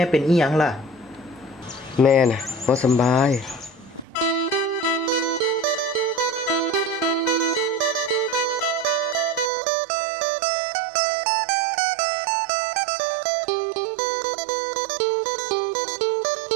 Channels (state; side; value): drops out; left; at 9.5 s